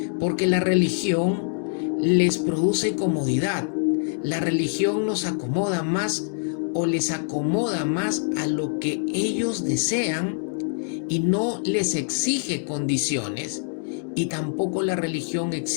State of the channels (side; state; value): right; silent; digital silence